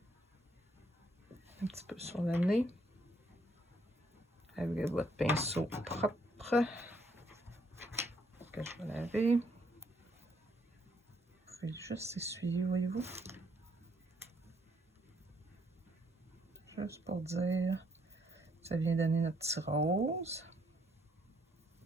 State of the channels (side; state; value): both; normal; correlation 0.70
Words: un petit peu sur le nez. Avec votre pinceau propre. Que je vais laver. Vous pouvez juste essuyer, voyez-vous. Juste pour dire, ça vient donner notre petit rose.